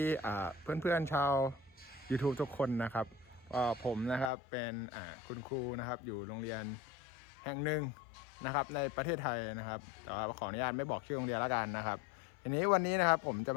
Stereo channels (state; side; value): drops out; right; at 4.3 s